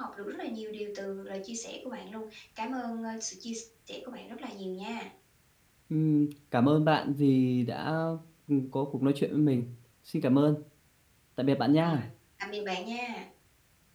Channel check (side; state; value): both; identical; correlation 1.00